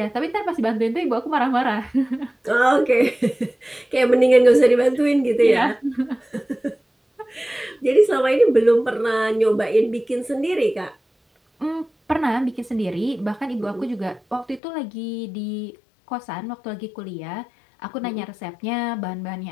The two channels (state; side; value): drops out; right; at 14.6 s